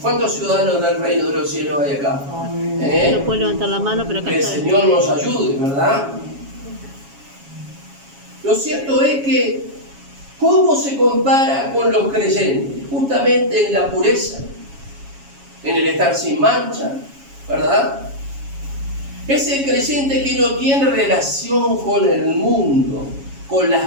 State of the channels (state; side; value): late; left; 7.2 ms